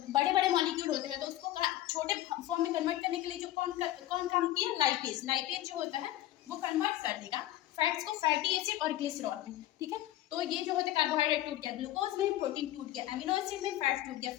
बड़े बड़े मॉलिक्यूल होते हैं तो उसको छोटे फॉर्म में कन्वर्ट करने के लिए जो कौन काम किया, लाइपेज जो होता है वो कन्वर्ट कर देगा फैट्स को फैटी एसिड और ग्लिसरॉल में, ठीक है। तो ये जो होते हैं कार्बोहाइड्रेट टूट गया, ग्लूकोज में प्रोटीन टूट गया, अमीनो एसिड में फैट टूट गया,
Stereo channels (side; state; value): right; quieter; 14.5 dB